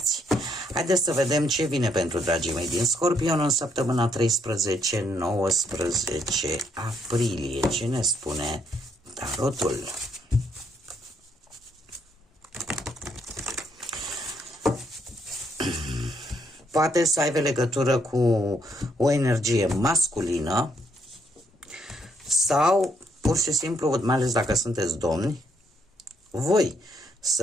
Haideți să vedem ce vine pentru dragii mei din Scorpion în săptămâna 13-19 aprilie. Ce ne spune tarotul? Poate să aibă legătură cu o energie masculină sau pur și simplu, mai ales dacă sunteți domni, voi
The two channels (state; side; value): normal; both; correlation 0.73